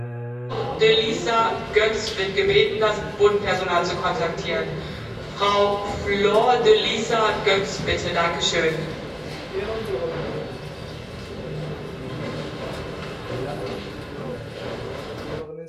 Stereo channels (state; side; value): identical; both; correlation 1.00